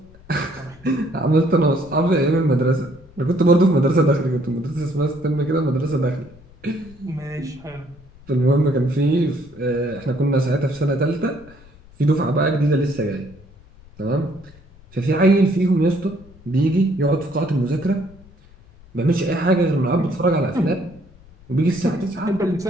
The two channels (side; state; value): left; noise; rumble, 24 dB below the sound